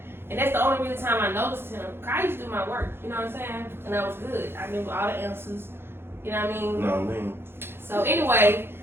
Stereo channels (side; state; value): left; late; 0.11 ms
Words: And that's the only real time I noticed him. I used to do my work, you know what I'm saying? And that was good. I knew all the answers. You know what I mean? No, I mean. So anyway,